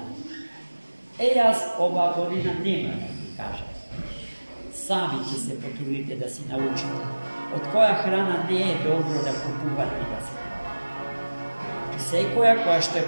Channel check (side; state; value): both; inverted; correlation -1.00